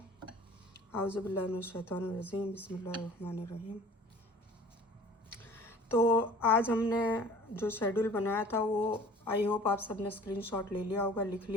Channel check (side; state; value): both; normal; correlation 0.47